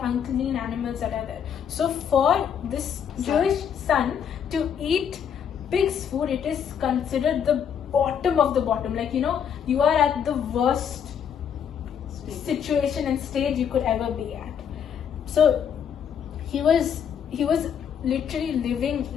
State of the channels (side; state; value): right; quieter; 8.0 dB